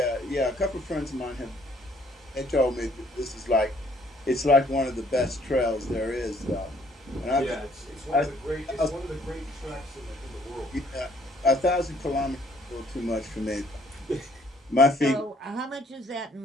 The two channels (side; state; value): both; normal; correlation 0.63